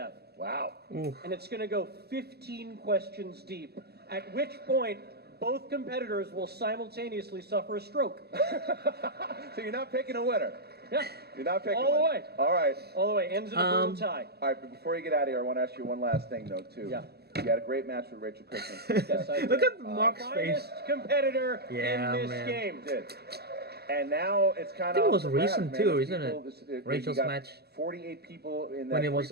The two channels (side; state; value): left; late; 0.47 ms